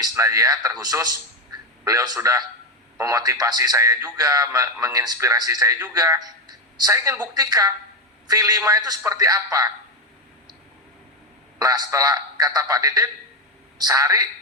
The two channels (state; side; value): normal; both; correlation 0.09